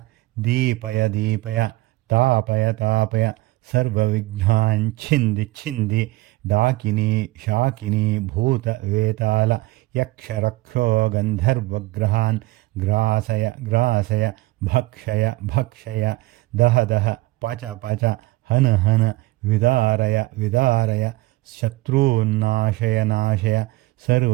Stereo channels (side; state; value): left; quieter; 19.8 dB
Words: ದೀಪಯ ದೀಪಯ ತಾಪಯ ತಾಪಯ ಸರ್ವವಿಘ್ನಾನ್ ಛಿಂದಿ ಛಿಂದಿ ಡಾಕಿನಿ ಶಾಕಿನಿ ಭೂತ ವೇತಾಲ ಯಕ್ಷ ರಕ್ಷೋ ಗಂಧರ್ವಗ್ರಹಾನ್ ಗ್ರಾಸಯ ಗ್ರಾಸಯ ಭಕ್ಷಯ ಭಕ್ಷಯ ದಹ ದಹ ಪಚ ಪಚ ಹನ ಹನ ವಿದಾರಯ ವಿದಾರಯ ಶತ್ರುನ್ನಾಶಯ ನಾಶಯ